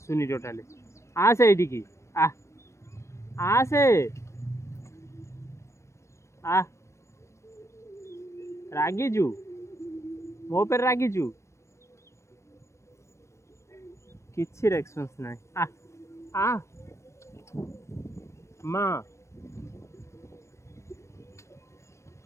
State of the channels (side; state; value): right; late; 0.14 ms